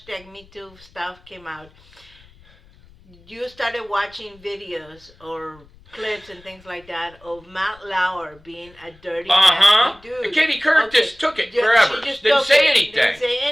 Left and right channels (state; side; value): noise; left; rumble, 27 dB below the sound